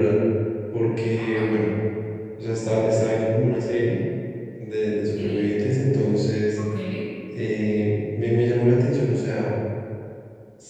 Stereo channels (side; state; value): both; identical; correlation 1.00